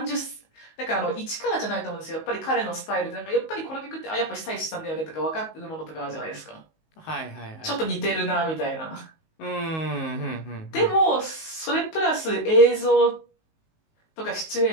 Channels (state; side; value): late; right; 19 ms